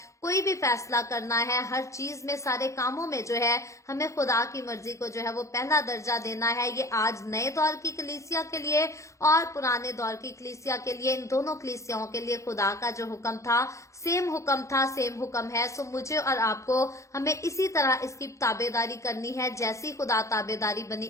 कोई भी फैसला करना है, हर चीज में, सारे कामों में जो है हमें खुदा की मर्जी को जो है वो पहला दर्जा देना है। ये आज नए दौर की कलीसिया के लिए और पुराने दौर की कलीसिया के लिए, इन दोनों कलीसियाओं के लिए खुदा का जो हुक्म था, सेम हुक्म है। सो मुझे और आपको हमें इसी तरह इसकी ताबेदारी करनी है। जैसी खुदा ताबेदारी बनी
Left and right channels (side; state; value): right; late; 0.15 ms